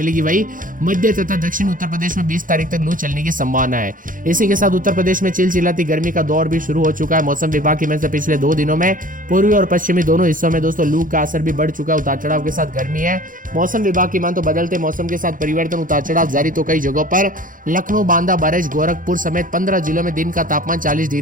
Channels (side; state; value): left; late; 0.39 ms